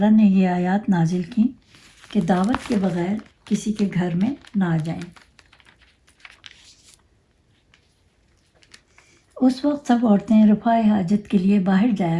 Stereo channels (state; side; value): identical; both; correlation 1.00